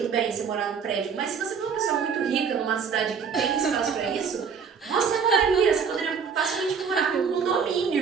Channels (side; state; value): left; quieter; 6.2 dB